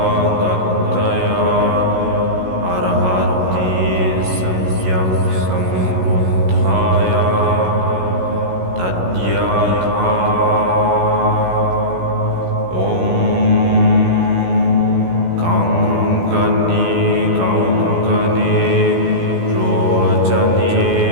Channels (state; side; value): late; left; 16 ms